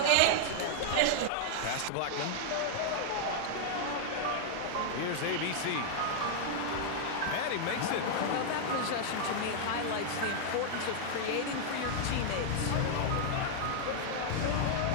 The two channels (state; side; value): different; both; correlation -0.01